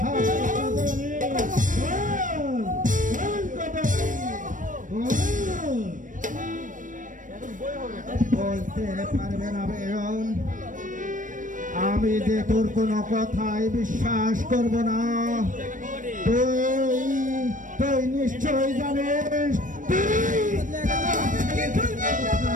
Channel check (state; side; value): late; left; 0.38 ms